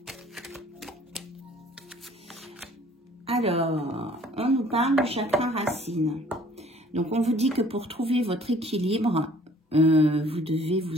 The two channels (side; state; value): both; normal; correlation 0.55